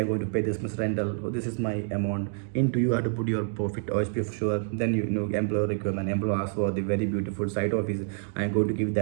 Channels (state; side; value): silent; left; 60 dB below the other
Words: going to pay this much rental. So this is my amount. Into you have to put your profit OSP for sure. Then employer requirement. Employer asks for the very beautiful site office. I'm going to give